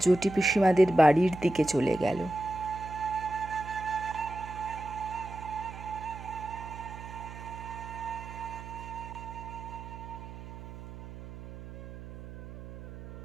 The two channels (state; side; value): noise; right; hum, 13 dB below the sound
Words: জটি পিসিমাদের বাড়ির দিকে চলে গেল।